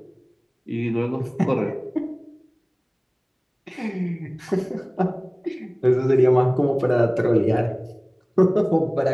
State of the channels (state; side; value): identical; both; correlation 1.00